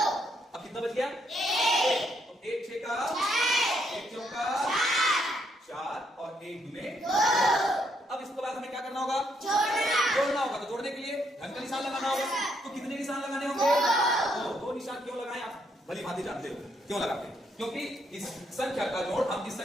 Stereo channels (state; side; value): normal; both; correlation 0.74